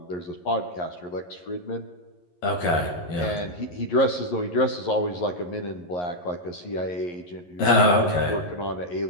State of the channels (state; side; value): late; right; 11 ms